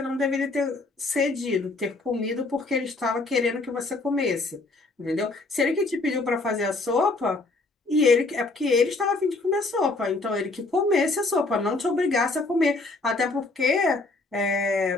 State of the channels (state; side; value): quieter; right; 3.3 dB